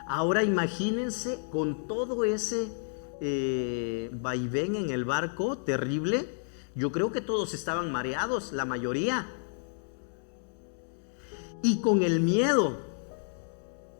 Ahora imagínense con todo ese vaivén en el barco terrible. Yo creo que todos estaban mareados, la mayoría. Y con el miedo.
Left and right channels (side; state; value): right; silent; digital silence